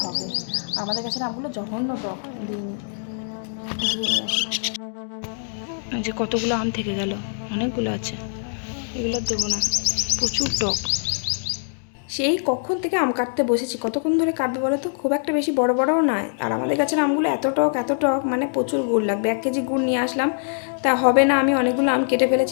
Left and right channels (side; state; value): right; silent; digital silence